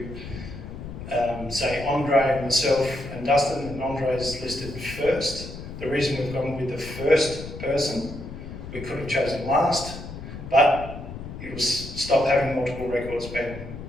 say Andre and myself and Dustin, and Andre is listed first. The reason we've gone with the first person, we could have chosen last, but it will stop having multiple records being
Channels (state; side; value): noise; left; rumble, 10 dB below the sound